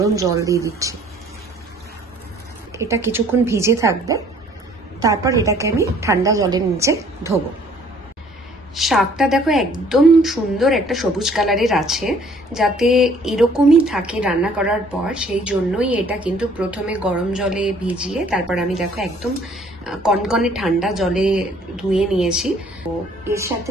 জল দিয়ে দিচ্ছি। এটা কিছুক্ষণ ভিজে থাকবে, তারপর এটাকে আমি ঠান্ডা জলের নিচে ধোবো। শাকটা দেখো একদম সুন্দর একটা সবুজ কালারের আছে, যাতে এরকমই থাকে রান্না করার পর, সেই জন্যই এটা কিন্তু প্রথমে গরম জলে ভিজিয়ে তারপর আমি দেখো একদম কনকনে ঠান্ডা জলে ধুয়ে নিয়েছি। তো এর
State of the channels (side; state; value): both; normal; correlation 0.57